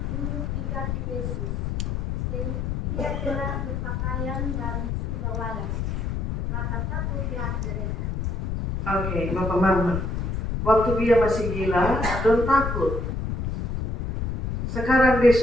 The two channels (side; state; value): left; noise; rumble, 2 dB below the sound